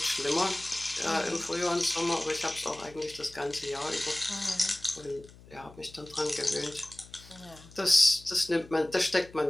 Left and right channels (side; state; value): left; noise; hum, 21 dB below the sound